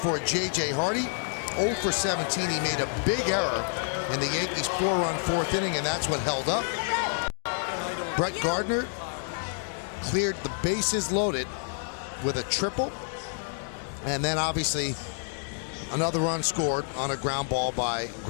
J.J. Hardy. 0 for 17. He made a big error in the Yankees' 4-run fourth inning, and that's what held up. Brett Gardner cleared the bases loaded with a triple, and then obviously another run scored on a ground ball by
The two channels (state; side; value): silent; right; 59 dB below the other